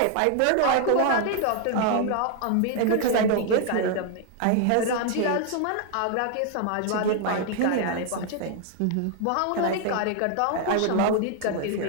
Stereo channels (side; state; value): both; different; correlation 0.00